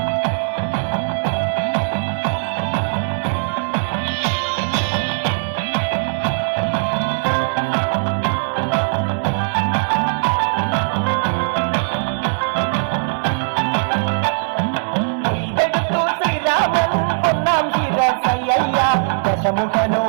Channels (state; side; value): silent; left; digital silence